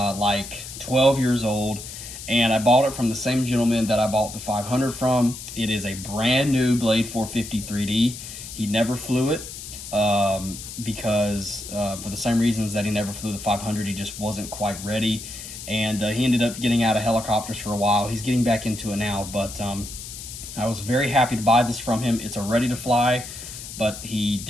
12 years old, and I bought it from the same gentleman that I bought the 500 from. It is a brand new Blade 450 3D. He never flew it because for the same reasons that he never flew the 500, he just wasn't quite ready. And he ended up getting out of helicopters for a while. He's getting back into it now, but I was very happy to buy this from him. It's a ready to fly, but he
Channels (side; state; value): left; noise; hiss, 11 dB below the sound